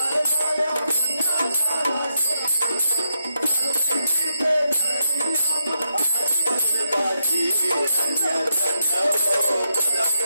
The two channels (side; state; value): both; inverted; correlation -0.82